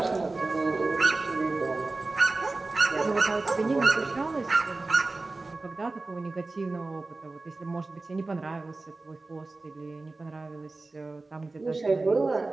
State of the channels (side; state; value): left; quieter; 3.4 dB